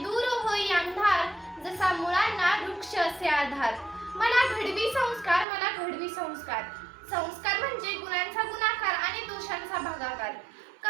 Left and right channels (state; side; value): drops out; left; at 5.5 s